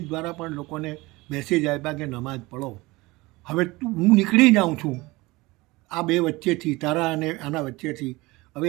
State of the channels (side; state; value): left; quieter; 21.7 dB